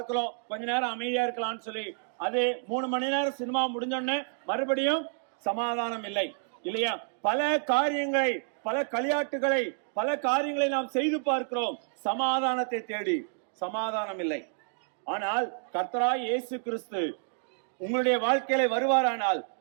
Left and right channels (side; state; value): left; silent; digital silence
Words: கொஞ்ச நேரம் அமைதியா இருக்கலாம்னு சொல்லி, அது 3 மணி நேரம் சினிமா முடிஞ்சோடனே மறுபடியும் சமாதானம் இல்லை, இல்லையா? பல காரியங்களை, பல களியாட்டுகளை, பல காரியங்களை நாம் செய்து பார்க்கிறோம் சமாதானத்தை தேடி, சமாதானம் இல்லை. ஆனால் கர்த்தராகிய இயேசு கிறிஸ்து உங்களுடைய வாழ்க்கையில வருவாரானால்,